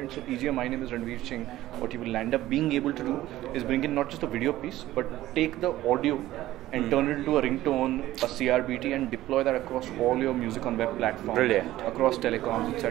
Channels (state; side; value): quieter; left; 15.2 dB